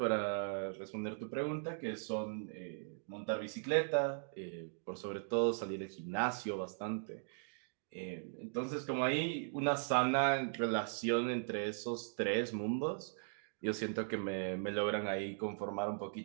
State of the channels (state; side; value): silent; left; digital silence